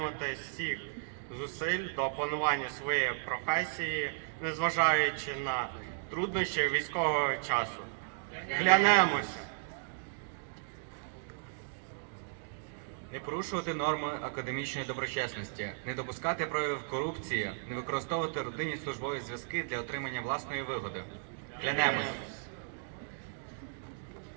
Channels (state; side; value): silent; left; digital silence